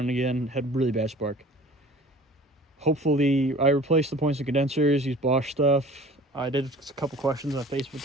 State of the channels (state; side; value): normal; both; correlation 0.46